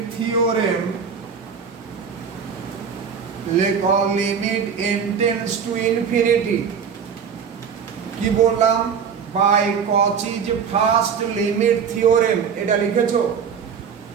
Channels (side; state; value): left; quieter; 6.7 dB